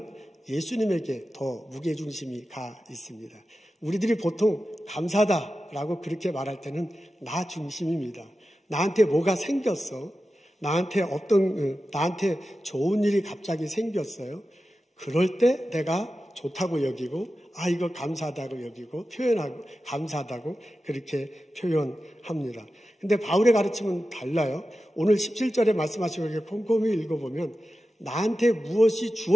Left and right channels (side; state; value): both; normal; correlation 0.93